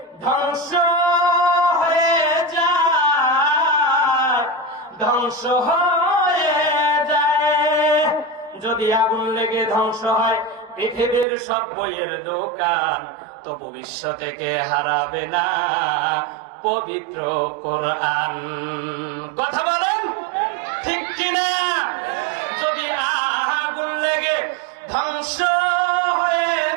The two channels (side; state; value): left; drops out; at 11.2 s